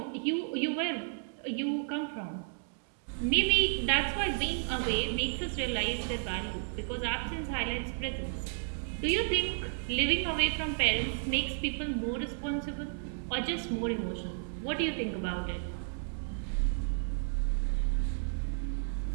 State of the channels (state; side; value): silent; left; digital silence